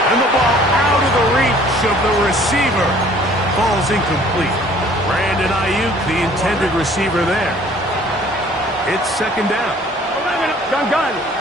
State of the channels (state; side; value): normal; both; correlation 0.54